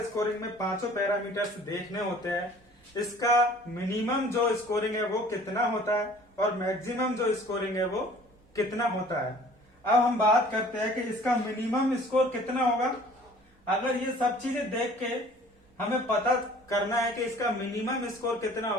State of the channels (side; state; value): both; normal; correlation 0.51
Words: स्कोरिंग में 5 पैरामीटर्स देखने होते हैं। इसका मिनिमम जो स्कोरिंग है वो कितना होता है और मैक्सिमम जो स्कोरिंग है वो कितना होता है। अब हम बात करते हैं कि इसका मिनिमम स्कोर कितना होगा। अगर ये सब चीजें देख के हमें पता करना है कि इसका मिनिमम स्कोर कितना